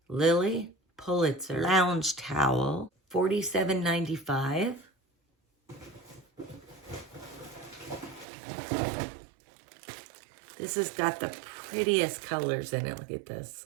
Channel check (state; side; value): drops out; left; at 8.2 s